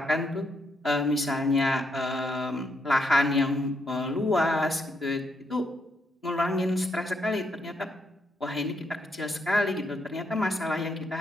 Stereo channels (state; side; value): normal; both; correlation 0.77